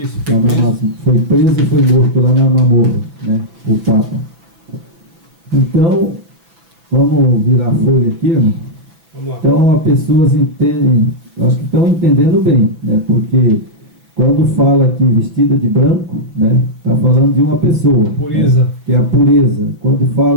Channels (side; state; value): left; late; 6.1 ms